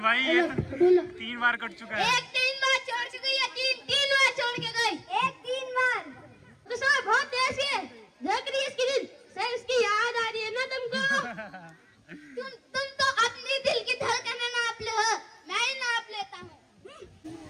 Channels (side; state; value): both; identical; correlation 1.00